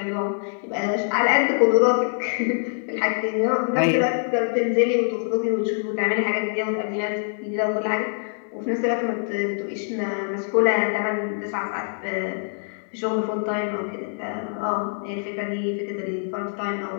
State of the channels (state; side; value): silent; right; digital silence